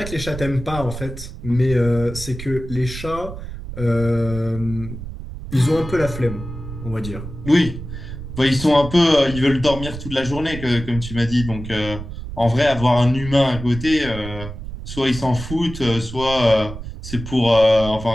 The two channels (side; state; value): right; noise; rumble, 10 dB below the sound